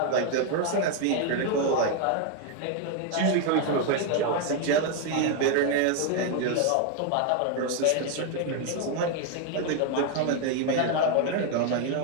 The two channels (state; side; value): different; both; correlation 0.01